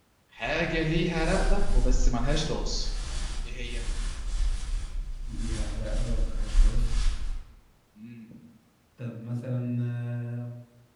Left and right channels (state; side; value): identical; both; correlation 1.00